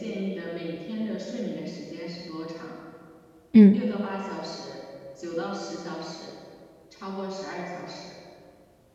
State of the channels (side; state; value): both; identical; correlation 1.00